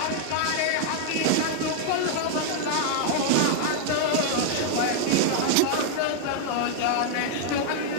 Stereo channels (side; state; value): both; different; correlation -0.01